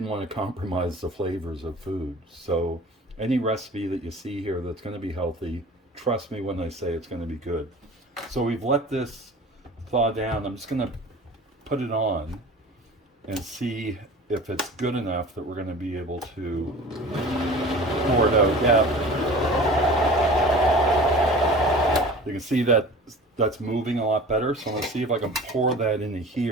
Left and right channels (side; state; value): both; normal; correlation 0.41